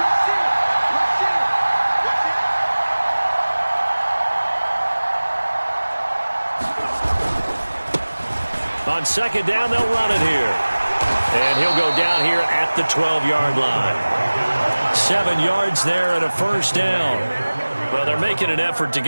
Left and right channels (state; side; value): inverted; both; correlation -1.00